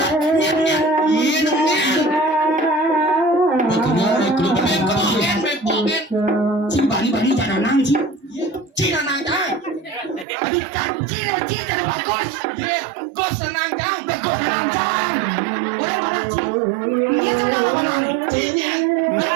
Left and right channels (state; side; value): drops out; left; at 10.2 s